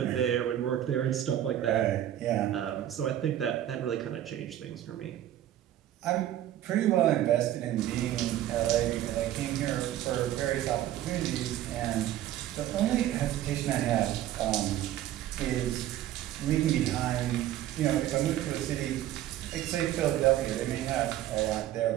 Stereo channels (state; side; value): quieter; left; 12.5 dB